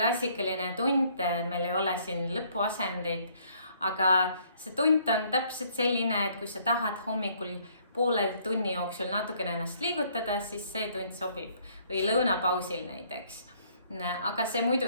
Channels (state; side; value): inverted; both; correlation -0.64